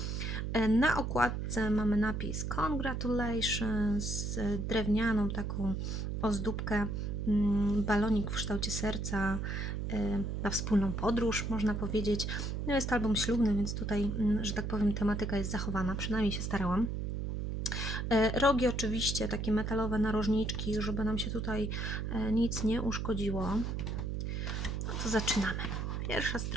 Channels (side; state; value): right; noise; hum, 2 dB below the sound